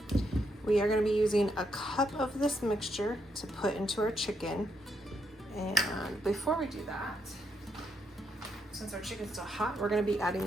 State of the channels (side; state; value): both; normal; correlation 0.78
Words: We are going to be using a cup of this mixture to put into our chicken. And before we do that, since our chicken's still hot, we're going to be adding